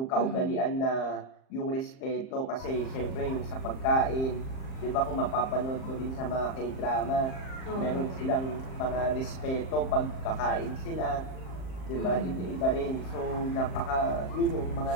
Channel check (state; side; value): late; right; 38 ms